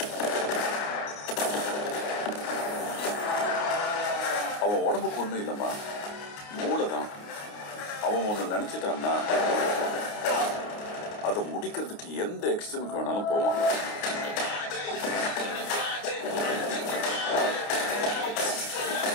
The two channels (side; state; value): right; late; 29 ms